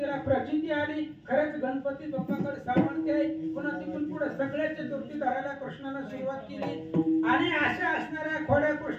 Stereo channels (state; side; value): identical; both; correlation 1.00